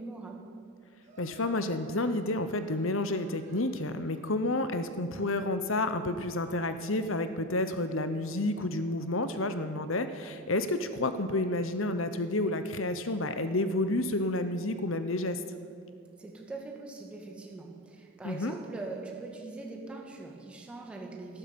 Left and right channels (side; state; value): both; normal; correlation 0.18